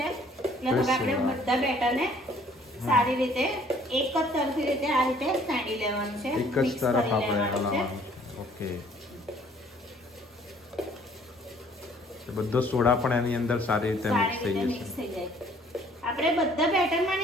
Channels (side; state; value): both; normal; correlation 0.58